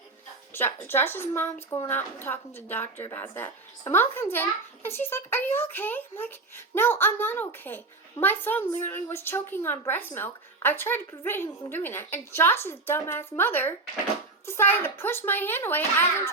Josh's mom's going out and talking to the doctor about that. My mom comes in, and she's like, are you okay? I'm like, no, I'm not okay. My son literally was choking on breast milk. I tried to prevent him from doing that, and Josh's dumbass mother decided to push my hand away as I'm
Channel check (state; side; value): quieter; left; 3.5 dB